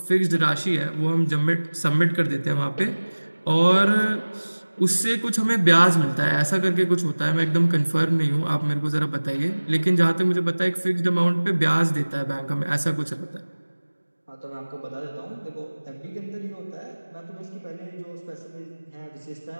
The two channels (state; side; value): inverted; both; correlation -1.00